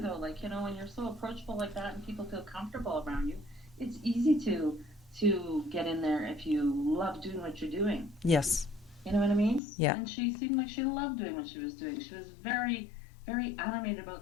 though. Like, when you're so approachable like that and people feel comfortable around you, it's easy to get in there if you love doing what you're doing. Yes. You know what I mean? Yeah. And she seemed like she loved doing what she was doing. She was very, very animated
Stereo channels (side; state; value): right; drops out; at 9.6 s